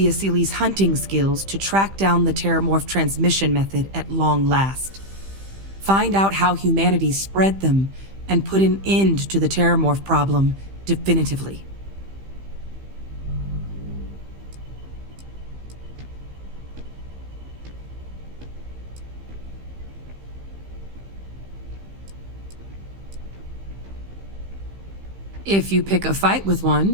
Asyles' hunting skills to track down the terramorph transmission method at long last. Find out how humanity spread them and put an end to the terramorph problem definitively. If you pick a fight with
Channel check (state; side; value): late; left; 15 ms